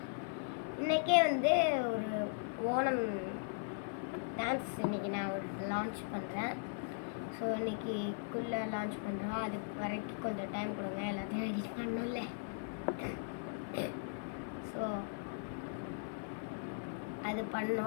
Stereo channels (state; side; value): silent; right; 52 dB below the other